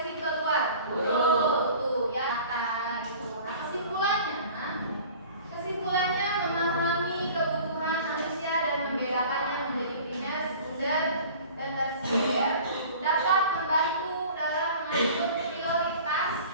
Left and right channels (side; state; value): both; inverted; correlation -0.44